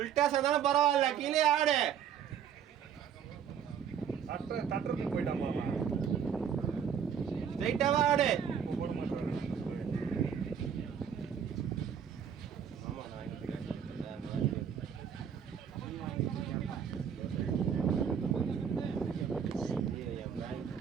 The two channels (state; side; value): quieter; left; 8.1 dB